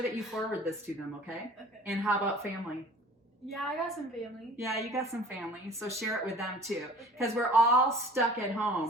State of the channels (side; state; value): both; normal; correlation 0.47